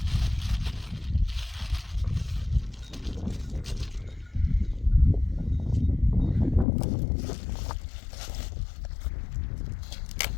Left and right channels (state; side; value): drops out; right; at 6.7 s